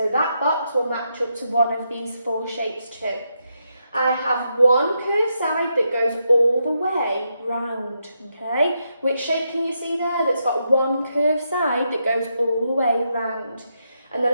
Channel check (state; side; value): inverted; both; correlation -0.82